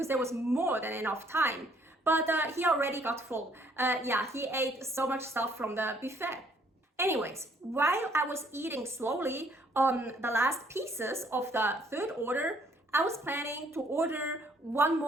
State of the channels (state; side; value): normal; both; correlation 0.64